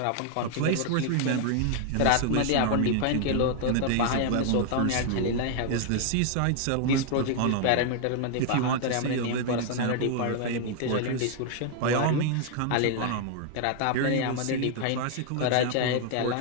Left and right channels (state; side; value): different; both; correlation 0.00